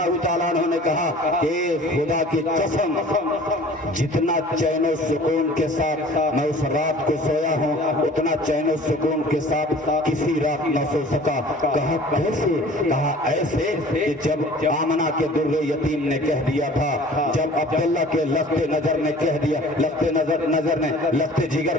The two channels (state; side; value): normal; both; correlation 0.47